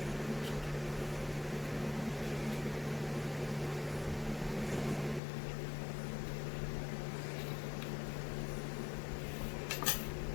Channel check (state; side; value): drops out; right; at 5.2 s